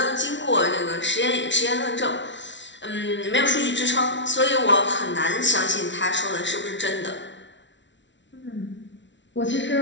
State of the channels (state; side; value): late; right; 0.53 ms